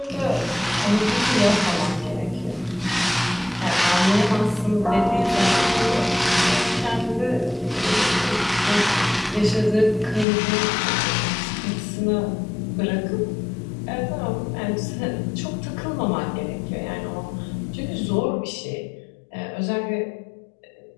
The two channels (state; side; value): drops out; right; at 10.2 s